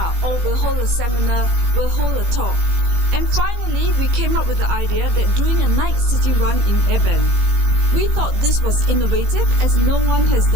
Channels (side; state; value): left; late; 17 ms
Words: Oh, we'll hold a seminar, we'll hold a talk. And finally, we came up with the idea that doing a night city run in Eben. We thought this was innovative as no one has